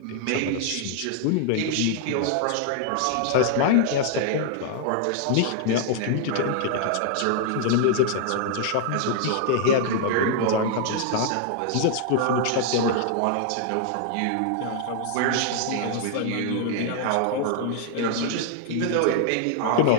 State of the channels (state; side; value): different; both; correlation 0.00